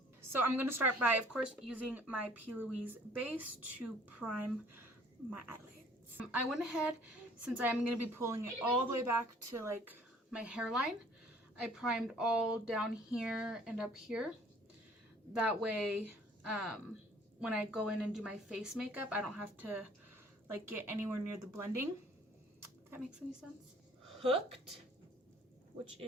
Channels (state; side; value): normal; both; correlation 0.56